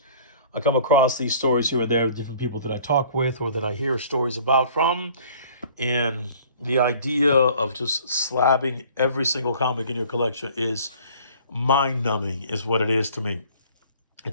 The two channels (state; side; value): inverted; both; correlation -0.52